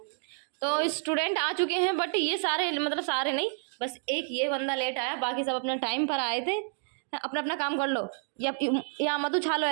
तो स्टूडेंट आ चुके हैं, बट ये सारे मतलब सारे नहीं, बस एक ये बंदा लेट आया, बाकी सब अपने टाइम पर आए थे। अपना अपना काम कर लो, या मत उछालो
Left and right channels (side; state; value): left; silent; 58 dB below the other